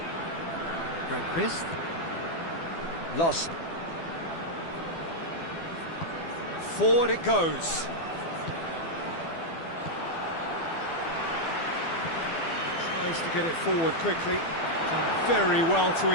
Grandquist. Lost. Forward it goes. Tries to get it forward quickly. Done very well to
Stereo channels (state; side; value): late; right; 12 ms